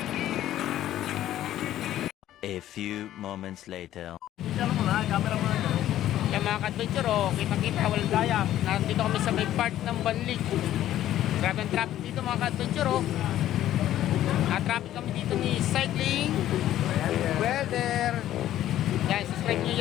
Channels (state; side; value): quieter; right; 12.8 dB